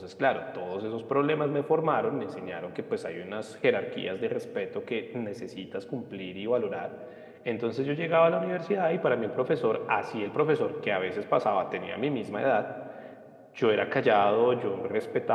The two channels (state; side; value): identical; both; correlation 1.00